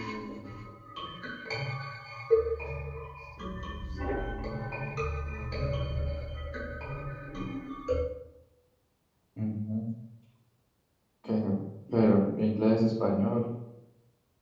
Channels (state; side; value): identical; both; correlation 1.00